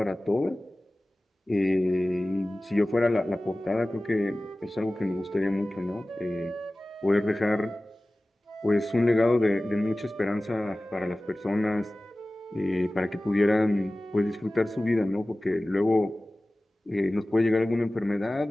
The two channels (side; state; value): both; normal; correlation 0.97